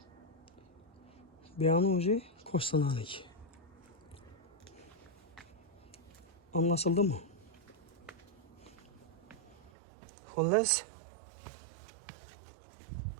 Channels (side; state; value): left; drops out; at 9.7 s